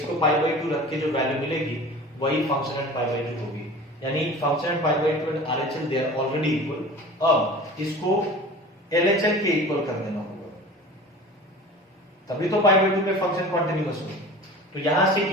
को pi by 2 रख के जो वैल्यू मिलेगी वही फंक्शन एट pi by 2 होगी, यानी function at pi by 2 and RHL they are already equal. अब इसको LHL के इक्वल कर देना होगा, तभी तो पाई बाय 2 पे फंक्शन कॉन्टिन्यूअस हो। तो यहां से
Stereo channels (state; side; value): normal; both; correlation 0.39